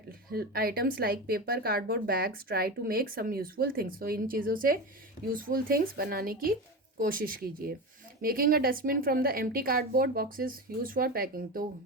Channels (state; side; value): normal; both; correlation 0.23